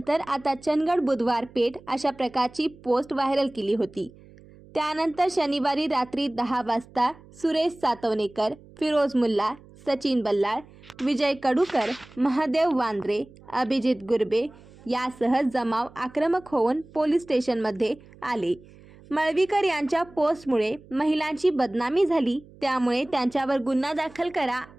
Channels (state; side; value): noise; right; hum, 23 dB below the sound